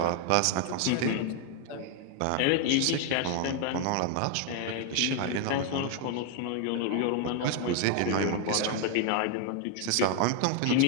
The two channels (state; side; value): different; both; correlation 0.01